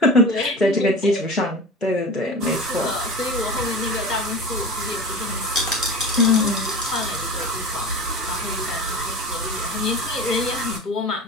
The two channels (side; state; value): both; normal; correlation 0.33